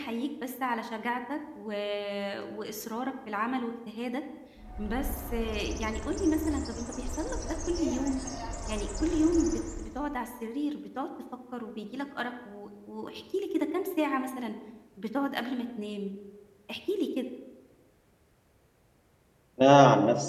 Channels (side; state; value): both; identical; correlation 1.00